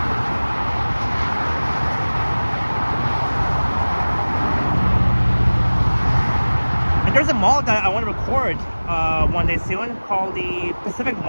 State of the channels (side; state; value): both; inverted; correlation -1.00